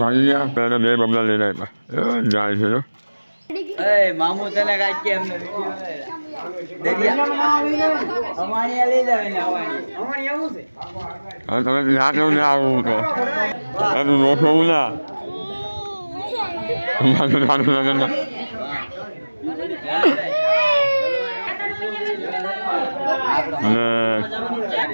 ગયા પહેલા બે બબલા લઈને આવ્યા જાય છે મામુ તને કાંઈ કે અમને અમાણી લઈ જાવે ને અમાણી આવું છે તમે ના કેવું ના આવું તો એનું રોકવું ના અને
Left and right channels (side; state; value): both; inverted; correlation -1.00